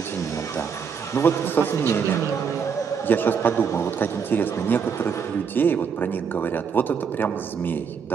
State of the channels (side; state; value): left; quieter; 6.5 dB